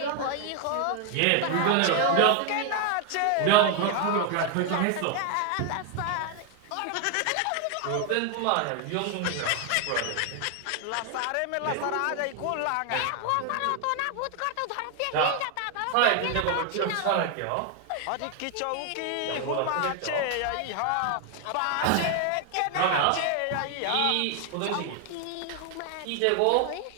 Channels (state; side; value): different; both; correlation 0.00